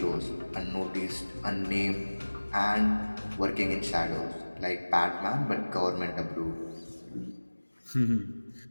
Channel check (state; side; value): inverted; both; correlation -1.00